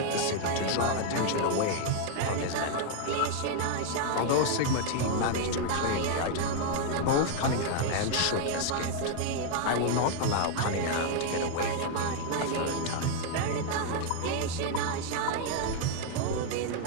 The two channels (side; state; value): both; different; correlation 0.00